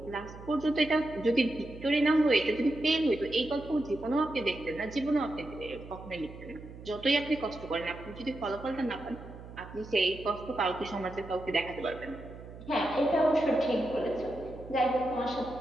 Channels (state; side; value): noise; right; hum, 15 dB below the sound